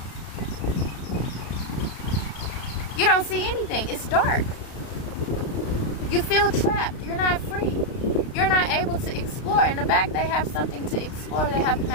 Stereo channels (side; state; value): right; late; 33 ms